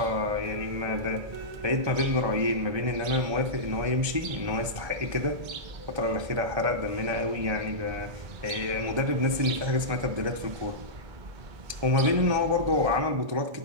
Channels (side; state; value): left; late; 1.3 ms